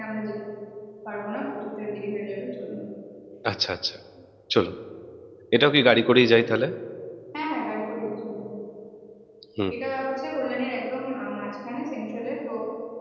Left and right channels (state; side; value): identical; both; correlation 1.00